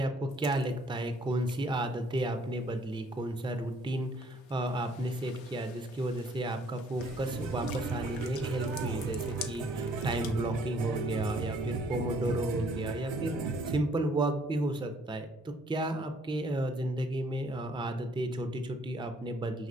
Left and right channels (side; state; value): both; normal; correlation 0.62